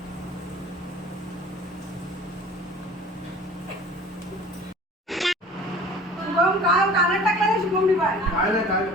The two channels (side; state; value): both; normal; correlation 0.45